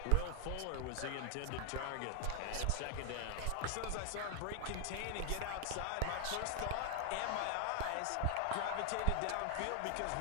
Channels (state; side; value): different; both; correlation 0.00